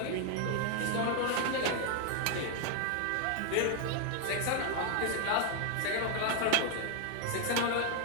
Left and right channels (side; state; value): both; different; correlation 0.00